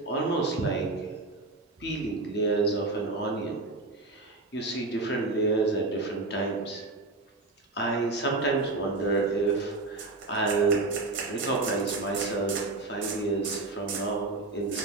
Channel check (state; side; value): quieter; left; 3.3 dB